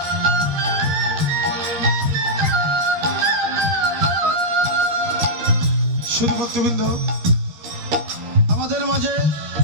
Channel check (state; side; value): late; left; 13 ms